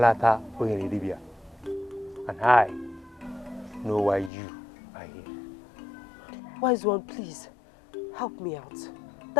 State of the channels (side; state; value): right; drops out; at 4.3 s